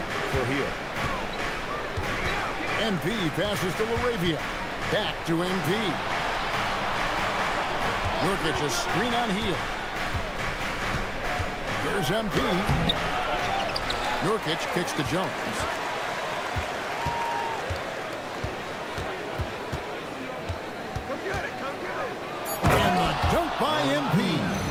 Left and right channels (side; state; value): both; identical; correlation 1.00